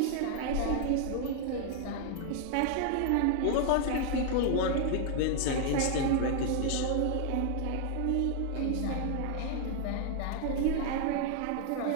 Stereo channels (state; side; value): different; both; correlation 0.00